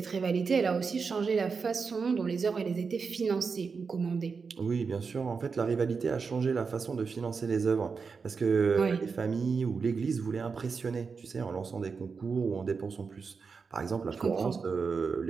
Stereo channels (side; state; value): left; quieter; 5.2 dB